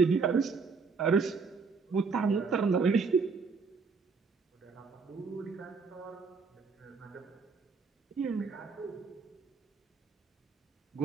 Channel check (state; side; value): quieter; left; 5.0 dB